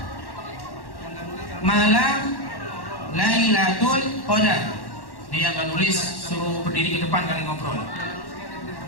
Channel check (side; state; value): right; late; 1.1 ms